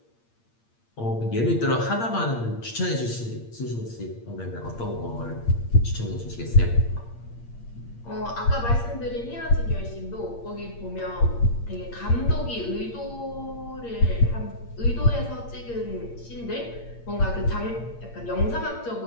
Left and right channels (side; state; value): right; late; 8.6 ms